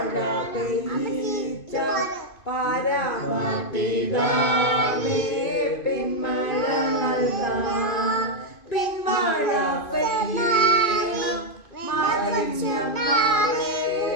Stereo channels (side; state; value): right; late; 2.5 ms